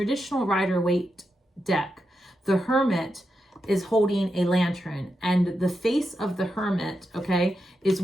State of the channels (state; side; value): normal; both; correlation 0.86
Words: Rider-Waite deck, the Hermit is holding a lantern, and the face of the Hermit, okay, is